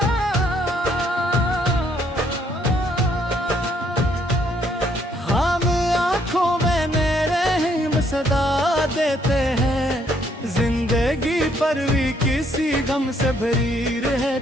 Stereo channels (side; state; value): both; normal; correlation 0.69